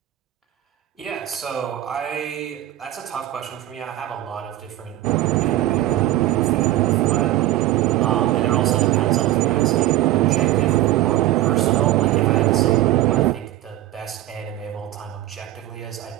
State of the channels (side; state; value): left; quieter; 14.9 dB